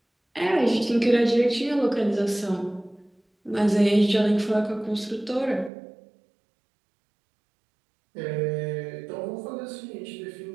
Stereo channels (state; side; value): drops out; left; at 5.7 s